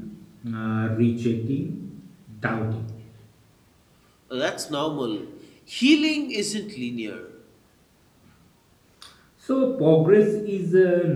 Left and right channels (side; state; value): both; identical; correlation 1.00